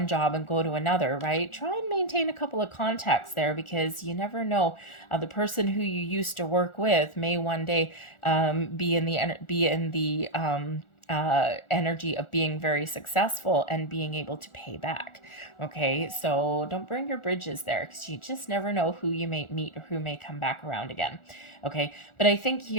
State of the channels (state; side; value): late; right; 1.4 ms